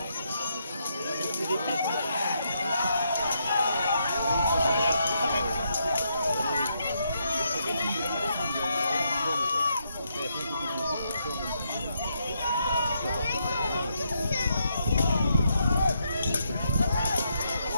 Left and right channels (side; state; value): both; inverted; correlation -0.78